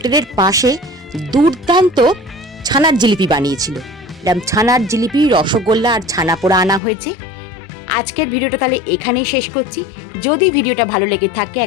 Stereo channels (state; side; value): drops out; right; at 6.8 s